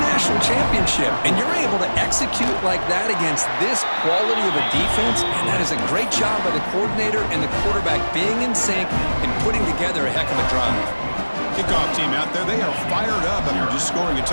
national championship, and you're able to execute like that against this quality of a defense, and that is a great job by the coordinator and the quarterback being in sync and putting together a heck of a drive. Kickoff team out there, they are fired up after just scoring a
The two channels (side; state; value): both; inverted; correlation -1.00